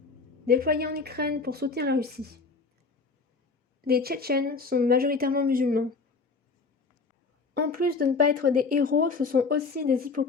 déployés en Ukraine pour soutenir la Russie. Les Tchétchènes sont majoritairement musulmans. En plus de ne pas être des héros, ce sont aussi des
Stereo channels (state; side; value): quieter; right; 4.4 dB